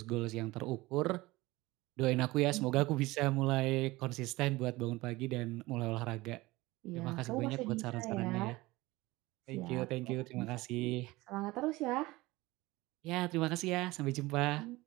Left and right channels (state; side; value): quieter; left; 20.4 dB